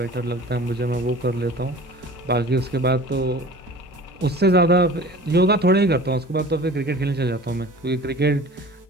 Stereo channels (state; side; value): normal; both; correlation 0.42